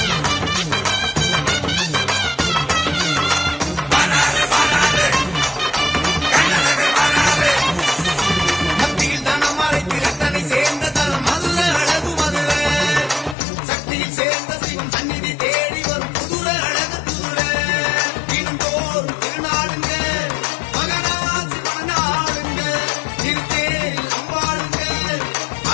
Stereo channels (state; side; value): drops out; right; at 13.4 s